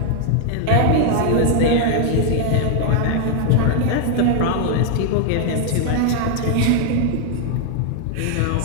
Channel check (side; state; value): both; different; correlation 0.00